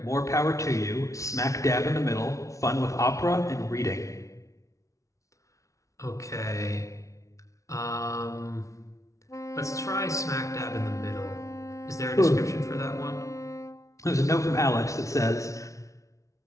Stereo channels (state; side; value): late; right; 0.15 ms